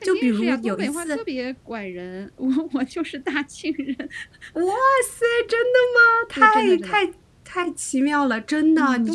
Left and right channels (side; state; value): both; identical; correlation 1.00